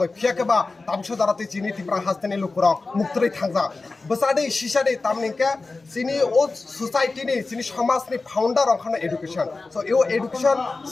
fiake ba tamso darate chini Tripura hastani lukurok muktri thangja basade shisade tamninke chini o society ni chini samaj ni founder okhana education so yo education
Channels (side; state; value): right; quieter; 3.7 dB